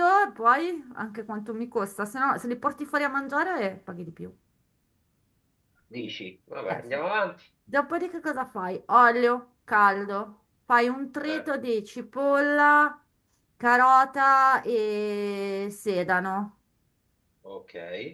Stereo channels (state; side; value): identical; both; correlation 1.00